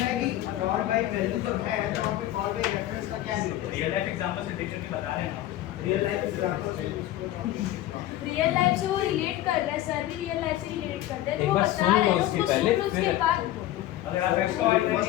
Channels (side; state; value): right; quieter; 14.3 dB